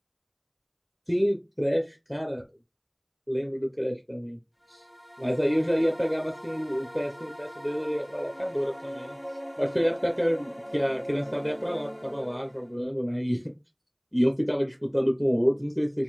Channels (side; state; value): both; identical; correlation 1.00